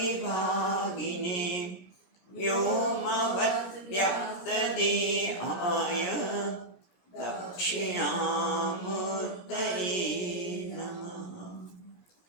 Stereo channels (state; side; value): late; right; 17 ms